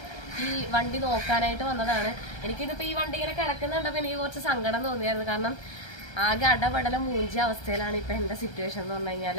ഈ വണ്ടി നോക്കാനായിട്ട് വന്നതാണ്. എനിക്കിതിപ്പോൾ ഈ വണ്ടി ഇങ്ങനെ കിടക്കുന്നുണ്ടപ്പോൾ എനിക്ക് കുറച്ച് സങ്കടം തോന്നിയായിരുന്നു. കാരണം ആകെ അടപടല മൂഞ്ചിയ അവസ്ഥയിലാണ് ഇപ്പം എൻ്റെ സിറ്റുവേഷൻ എന്ന് പറഞ്ഞു കഴിഞ്ഞാൽ.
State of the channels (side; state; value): right; late; 1.3 ms